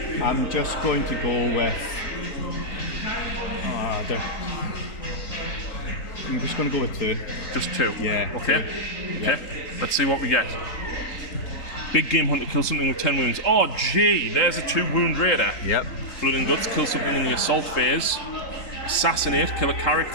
I'm just going to go with... I'm just going to go with 2. Just 2? Yeah. Okay. 2. Okay. Let's see what we get. Big Game Hunter, kill something with 10 wounds. Oh, gee, there's a 2 wound raider. Yep. Blood and Guts, kill something in the assault phase. Assassinate, kill a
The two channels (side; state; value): right; late; 3.9 ms